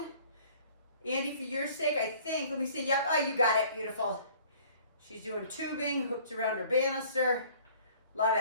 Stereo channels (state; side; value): inverted; both; correlation -0.53